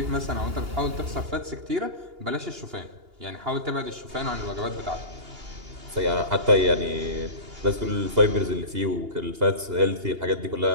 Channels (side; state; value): left; late; 2.8 ms